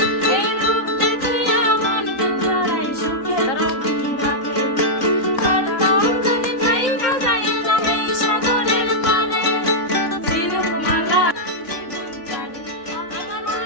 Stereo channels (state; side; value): late; right; 3.9 ms